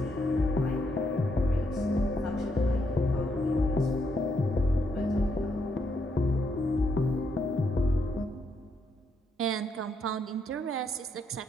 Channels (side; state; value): both; normal; correlation 0.76